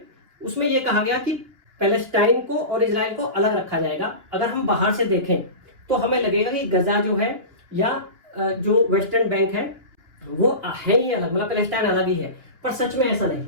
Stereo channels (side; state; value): left; late; 2.9 ms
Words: उसमें यह कहा गया कि पैलेस्टाइन को और इजराइल को अलग रखा जाएगा। अगर हम बाहर से देखें तो हमें लगेगा कि गजा जो है या जो वेस्टर्न बैंक है वो है ही अलग, मतलब पैलेस्टाइन अलग ही है, पर सच में ऐसा नहीं